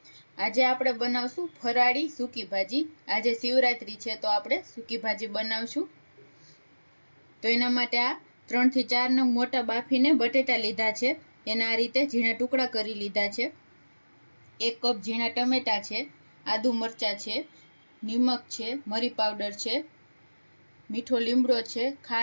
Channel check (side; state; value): both; inverted; correlation -1.00